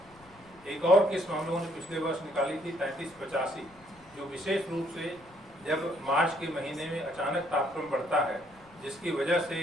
एक और किस्म हम लोगों ने पिछले वर्ष निकाली थी 3385, जो विशेष रूप से जब मार्च के महीने में अचानक तापक्रम बढ़ता है जिसकी वजह से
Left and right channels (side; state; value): left; noise; rumble, 26 dB below the sound